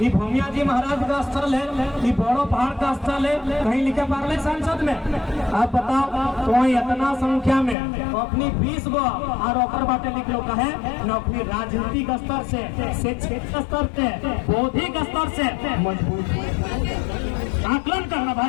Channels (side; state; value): right; drops out; at 7.8 s